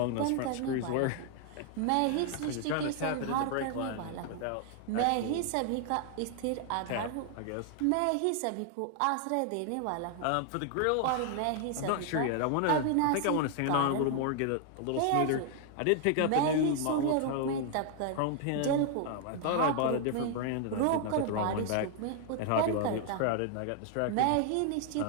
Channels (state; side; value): different; both; correlation 0.00